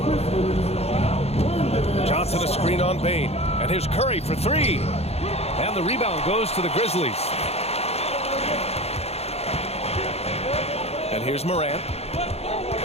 Johnson a screen on Bain. And here's Curry for three. And the rebound goes to the Grizzlies. And here's Morant.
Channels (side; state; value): right; late; 0.30 ms